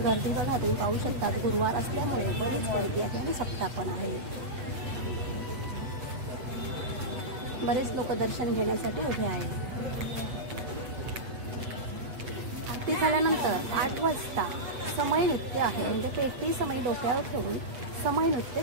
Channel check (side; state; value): left; late; 8.0 ms